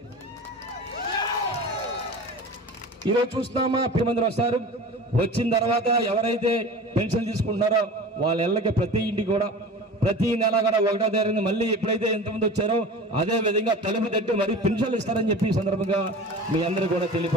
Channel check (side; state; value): both; normal; correlation 0.35